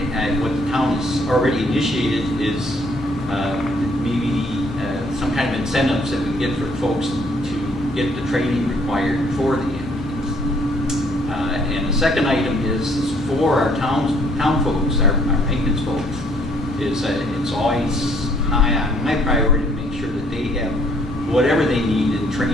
the town has already initiated is maybe some kind of incentives that we get for folks to get the training required for the EMTs. And the second item is for our town folks, our maintenance folks, it's always high on my priority to make sure that they have whatever they need in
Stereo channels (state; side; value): normal; both; correlation 0.64